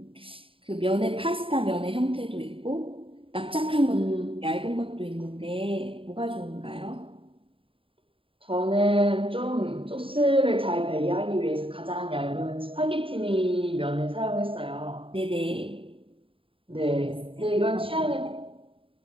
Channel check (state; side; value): late; left; 0.26 ms